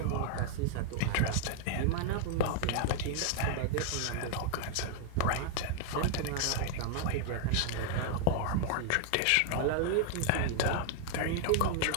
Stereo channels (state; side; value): different; both; correlation 0.00